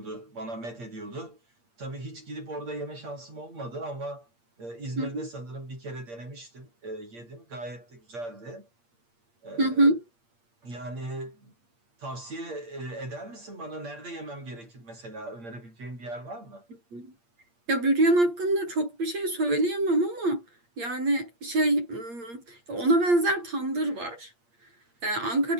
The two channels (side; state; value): left; late; 8.6 ms